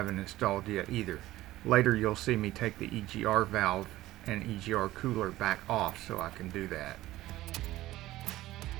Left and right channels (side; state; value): left; quieter; 16.2 dB